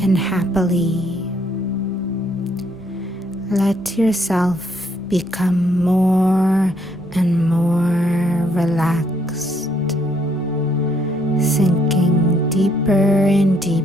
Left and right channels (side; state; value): both; normal; correlation 0.70